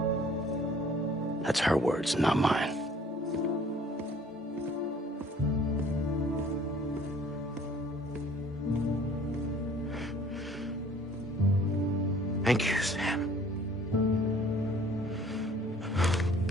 That's her words, not mine. Thank you, Sam.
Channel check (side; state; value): both; normal; correlation 0.54